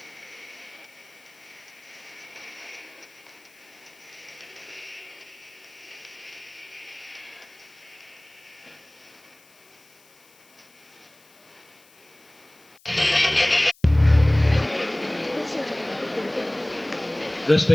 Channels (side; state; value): left; noise; hiss, 28 dB below the sound